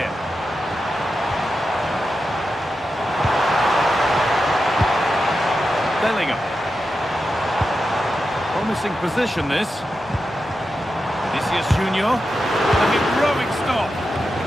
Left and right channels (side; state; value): both; normal; correlation 0.89